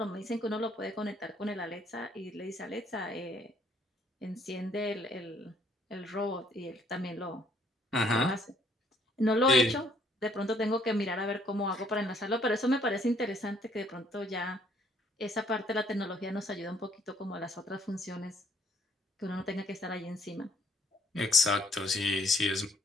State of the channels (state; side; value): normal; both; correlation 0.65